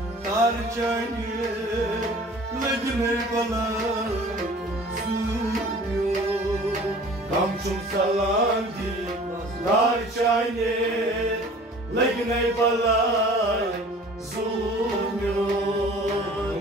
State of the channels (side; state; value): both; normal; correlation 0.47